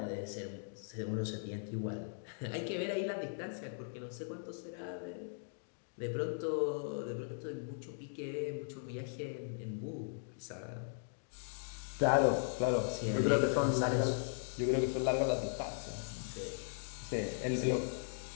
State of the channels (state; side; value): silent; right; digital silence